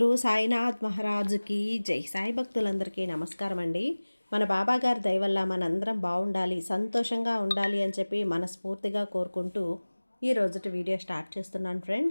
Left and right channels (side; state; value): both; inverted; correlation -1.00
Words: సాయినాథ్ మహారాజుకి జై. సాయి భక్తులందరికీ నమస్కారం అండి. మన బాబాగారి దయ వల్ల మనందరం బాగుండాలి, సంతోషంగా ఉండాలి అని చెప్పి మనస్ఫూర్తిగా కోరుకుంటూ ఈ రోజుటి వీడియో స్టార్ట్ చేస్తున్నాను